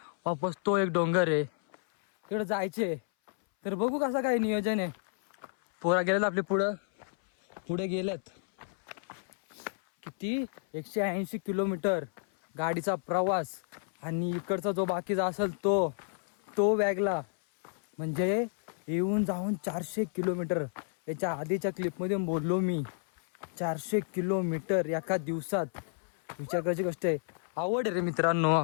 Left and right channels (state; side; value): silent; right; 57 dB below the other